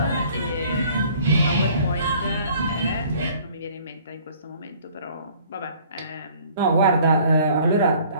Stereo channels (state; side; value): inverted; both; correlation -0.55